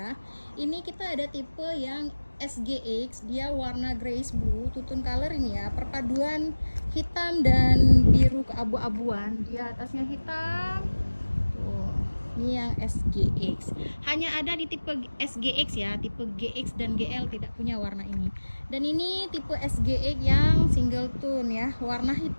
Ini kita ada tipe yang SGX, dia warna grayish blue, tutun color ini ya, perpaduan hitam dan biru keabu-abuan. Dia atasnya hitam. Tuh, ini yang SGX. Hanya ada di tipe SGX ya, tipe GX dan GL tidak punya warna ini. Dan ini tipe SGX yang single tone ya, warna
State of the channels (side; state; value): both; inverted; correlation -1.00